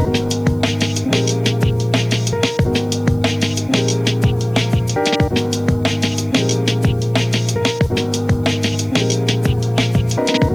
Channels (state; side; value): noise; right; hiss, 29 dB below the sound